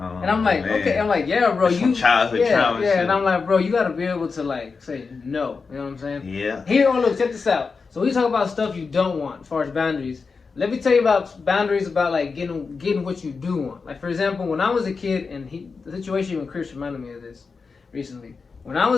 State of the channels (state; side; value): quieter; right; 4.8 dB